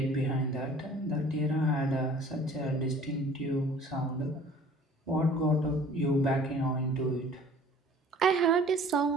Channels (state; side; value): normal; both; correlation 0.49